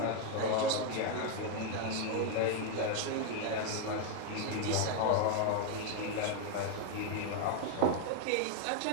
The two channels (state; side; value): different; both; correlation 0.01